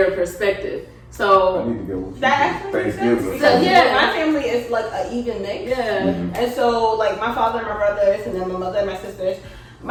perspective. So I need to go with you. That actually makes sense. Thanksgiving. Because Yeah. my family is like an even mix. yeah, And so like my father and my brothers and then my mother and my sisters.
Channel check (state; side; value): identical; both; correlation 1.00